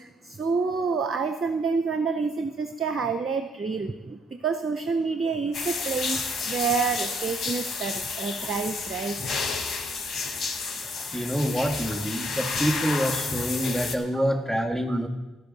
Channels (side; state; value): both; normal; correlation 0.72